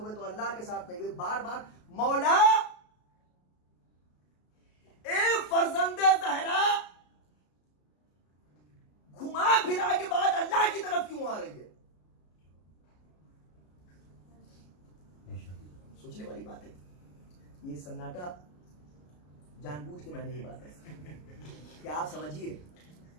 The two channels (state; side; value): late; right; 33 ms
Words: तो अल्लाह के साथ नहीं हुए। बार बार मौला ए फर्जंदे ज़हरा घुमा फिरा के बाद अल्लाह की तरफ क्यों आ रही है? सोचने वाली बात है। ये सन्नाटा जानबूझ के मैंने ये बात है कि आप समझिए,